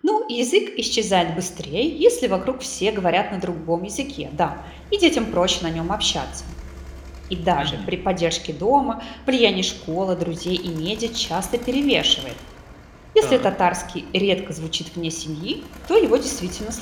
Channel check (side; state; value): both; identical; correlation 1.00